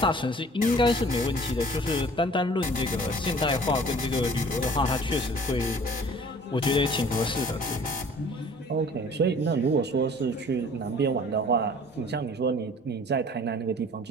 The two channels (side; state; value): both; normal; correlation 0.50